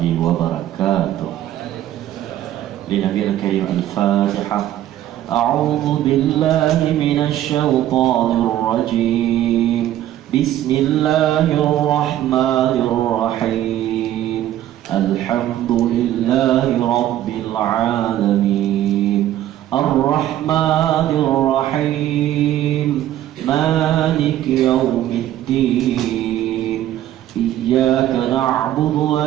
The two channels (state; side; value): quieter; left; 12.6 dB